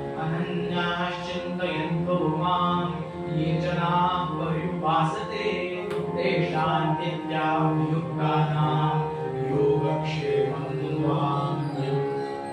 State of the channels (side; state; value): both; identical; correlation 1.00